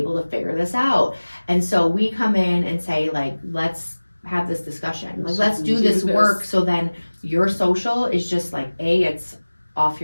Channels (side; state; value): both; inverted; correlation -1.00